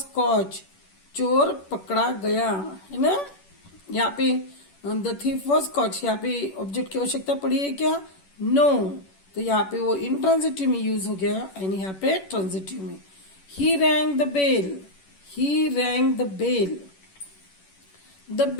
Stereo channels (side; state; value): right; late; 11 ms